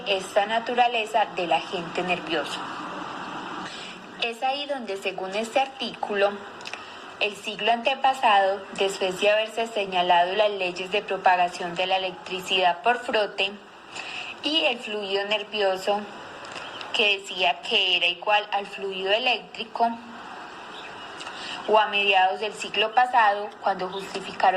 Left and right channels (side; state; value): both; identical; correlation 1.00